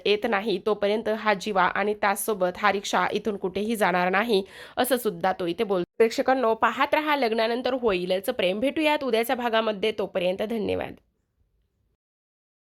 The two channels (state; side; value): identical; both; correlation 1.00